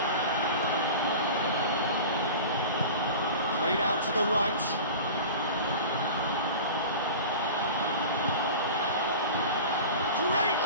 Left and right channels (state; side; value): inverted; both; correlation -0.35